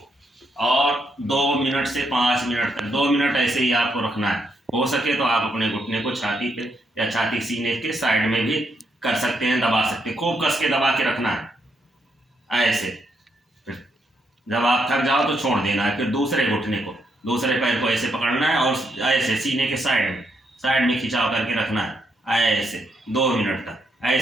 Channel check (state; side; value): normal; both; correlation 0.78